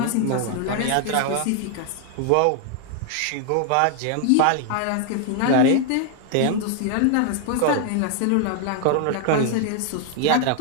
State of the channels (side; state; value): both; different; correlation 0.00